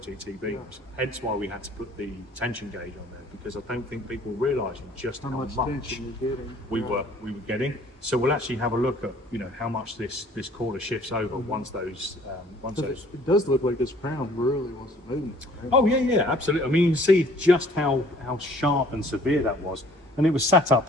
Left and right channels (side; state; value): both; normal; correlation 0.55